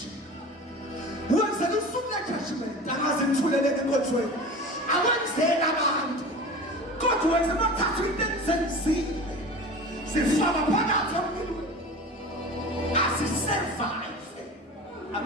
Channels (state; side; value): normal; both; correlation 0.35